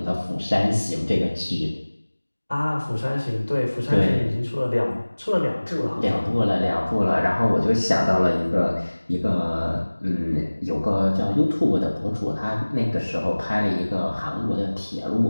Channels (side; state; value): both; inverted; correlation -1.00